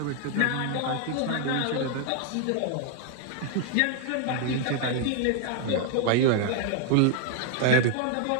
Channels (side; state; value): both; different; correlation 0.00